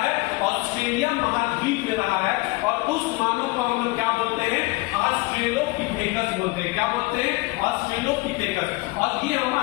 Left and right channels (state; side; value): quieter; right; 23.7 dB